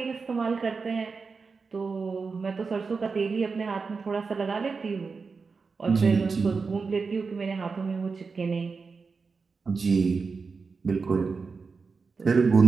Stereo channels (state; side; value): quieter; left; 4.8 dB